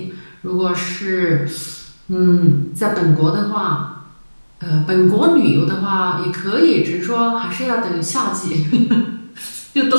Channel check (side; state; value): both; inverted; correlation -1.00